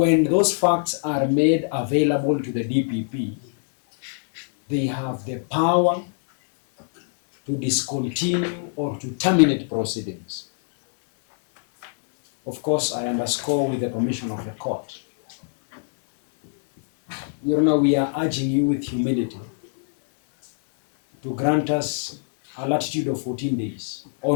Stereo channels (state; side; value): silent; right; 63 dB below the other